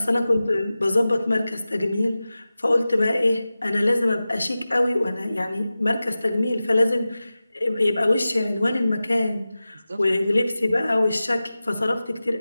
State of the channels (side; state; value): both; inverted; correlation -0.95